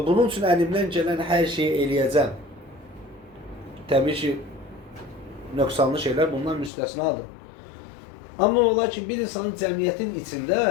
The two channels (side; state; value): right; drops out; at 6.7 s